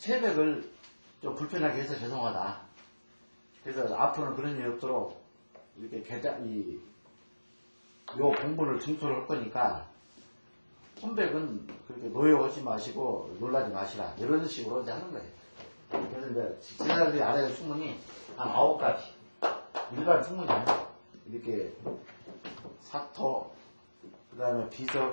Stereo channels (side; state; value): both; inverted; correlation -1.00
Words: 좀 불편하게 해서 죄송하다. 그래서 앞으로는 그런 일이 없도록 이렇게 요 공부를 증토를 할 거니까 혼백은 그렇게 노여하지 마시고 놀라지 마시라. 이런 식으로 이제 하는 거예요. 그래서 이제 지사들이 알아야 될 충문이 한 9가지. 일반 충문이 아니에요. 이렇게 사토, 그 다음에